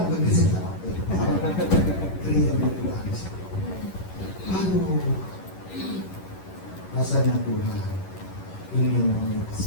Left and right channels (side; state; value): right; late; 11 ms